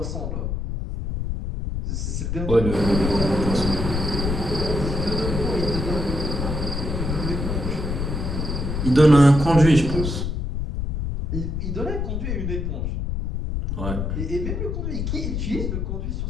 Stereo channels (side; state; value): left; noise; rumble, 2 dB below the sound